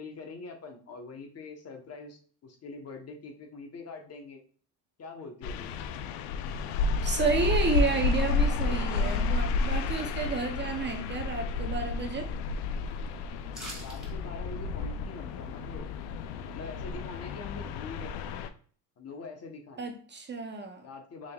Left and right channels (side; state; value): both; normal; correlation 0.27